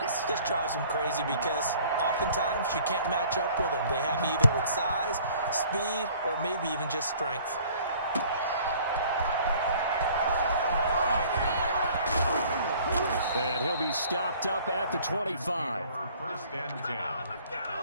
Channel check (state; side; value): inverted; both; correlation -0.53